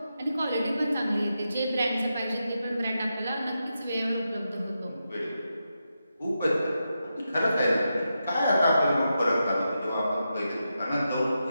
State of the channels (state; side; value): inverted; both; correlation -0.87